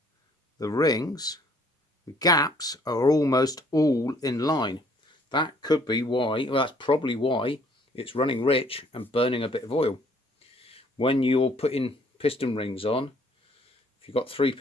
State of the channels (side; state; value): both; normal; correlation 0.61